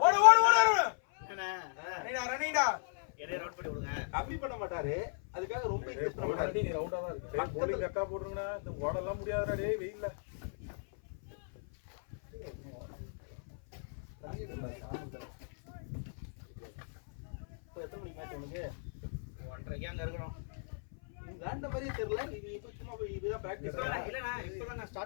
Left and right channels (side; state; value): right; silent; 54 dB below the other